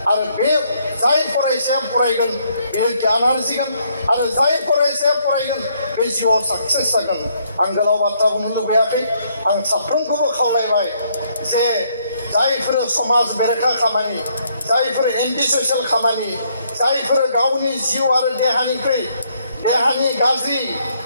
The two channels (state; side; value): inverted; both; correlation -0.70